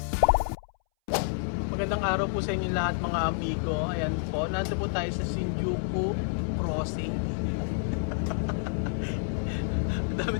Magandang araw po sa inyo lahat mga amigo. Ayan po, nandito po tayo sa Shinjuku Crossing. Ang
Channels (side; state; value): right; silent; 59 dB below the other